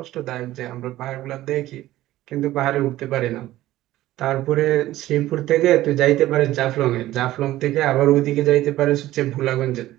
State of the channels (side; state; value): left; quieter; 15.3 dB